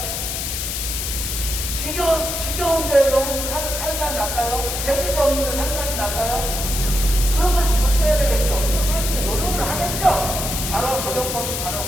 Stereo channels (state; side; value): noise; left; hiss, 3 dB below the sound